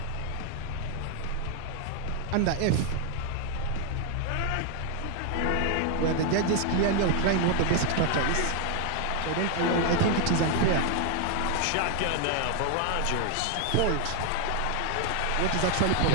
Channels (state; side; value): different; both; correlation 0.00